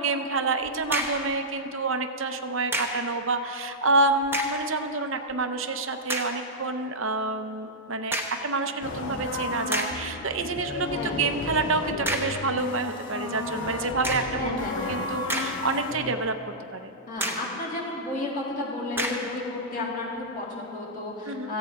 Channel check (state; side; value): normal; both; correlation -0.11